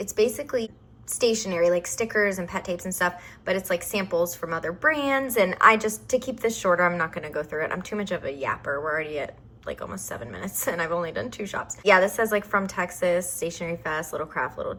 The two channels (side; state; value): both; identical; correlation 1.00